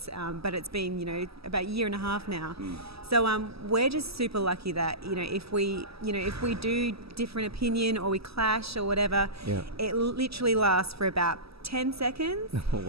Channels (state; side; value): late; left; 0.77 ms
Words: But it's been about a year and a half now. So we're just super lucky that if we do different opinion or we clash or whatever, it literally lasts for about 10 seconds.